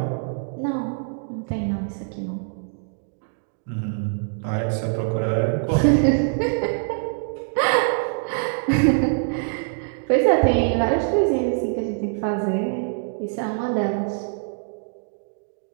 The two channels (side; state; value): left; silent; digital silence